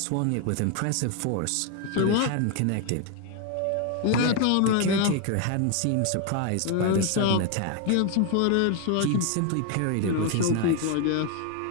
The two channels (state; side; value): different; both; correlation 0.01